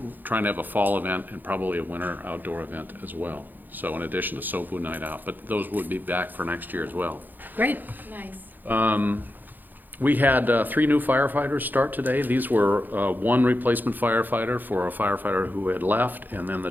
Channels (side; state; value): left; late; 0.087 ms